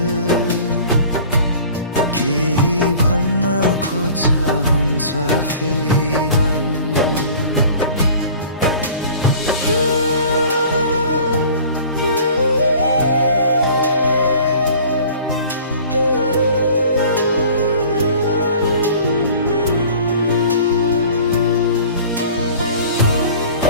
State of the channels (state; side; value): inverted; both; correlation -0.47